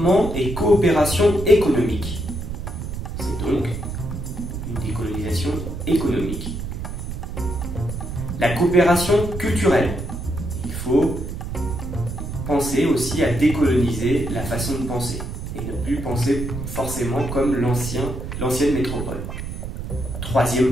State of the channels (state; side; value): noise; right; rumble, 6 dB below the sound